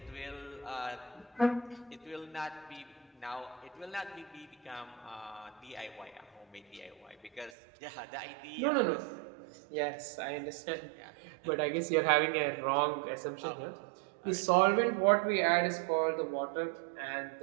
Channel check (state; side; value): drops out; left; at 7.5 s